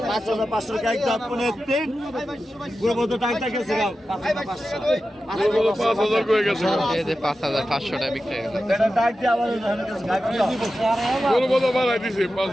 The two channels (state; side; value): normal; both; correlation 0.93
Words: 5,500 টাকা একদম পুনে 3 গুরুবত টাকা গেছে 5,000 করে গেছে 5,500 টাকা বিক্রি হয়ে গেল এটা ডাক দিয়ে আমাদের কাছে বড় বড় বাড়াই দিছে